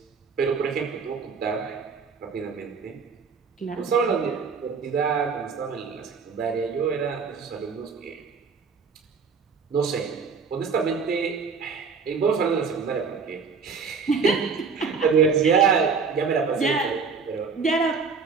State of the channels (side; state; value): left; quieter; 5.4 dB